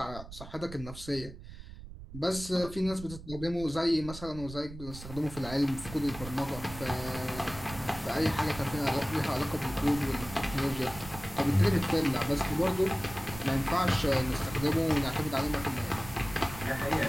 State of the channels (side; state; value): right; noise; rumble, 13 dB below the sound